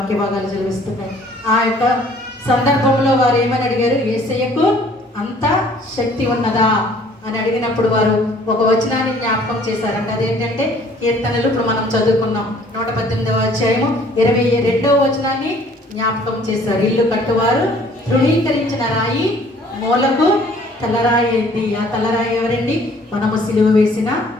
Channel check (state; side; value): normal; both; correlation 0.56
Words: భాగాలు చదివిస్తున్నాయి. ఆ యొక్క సందర్భంలో వారు ఏమని అడిగారు? యేసయ్యకు అంత శక్తి ఉన్నదా అని అడిగినప్పుడు వారు ఒక వచనాన్ని జ్ఞాపకం చేశారంట. అదేంటంటే కీర్తనలు ఇప్పుడు మనం చదువుకున్నాం 118వ అధ్యాయము 22వ వచనాన్ని జ్ఞాపకం చేశారు. ఇల్లు కట్టువారు తృణీకరించిన రాయి మూలకు తలరాయి అయింది. ఆ తలరాయి ఎవరండి? మనము సిలువ వేసిన